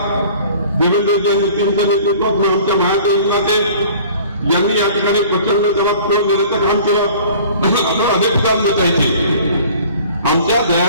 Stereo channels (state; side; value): inverted; both; correlation -0.48